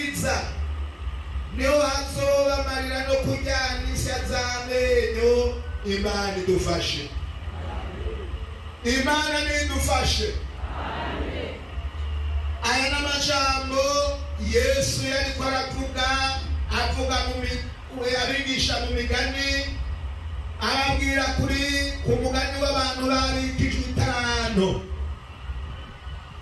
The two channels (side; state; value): both; identical; correlation 1.00